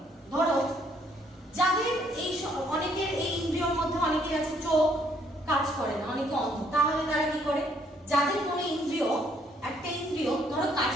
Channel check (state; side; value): normal; both; correlation 0.67